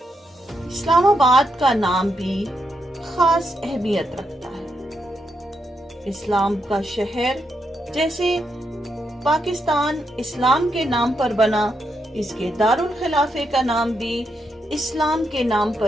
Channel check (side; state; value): both; normal; correlation 0.82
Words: اسلام آباد کا نام بھی خاص اہمیت رکھتا ہے۔ اسلام کا شہر جیسے پاکستان اسلام کے نام پر بنا، اس کے دارالخلافے کا نام بھی اسلام کے نام